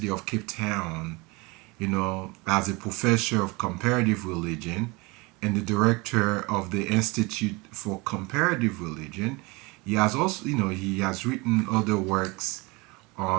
of Cape Town. as a professor of comparative religion and the director of the Institute for Comparative Religion. He has also, he has written other works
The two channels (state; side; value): quieter; left; 25.7 dB